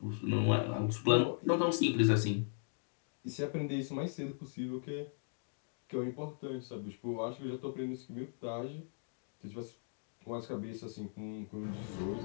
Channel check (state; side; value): silent; right; digital silence